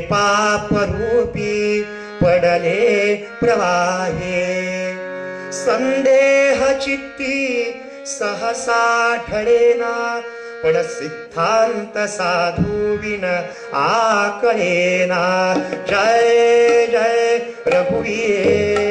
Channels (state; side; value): identical; both; correlation 1.00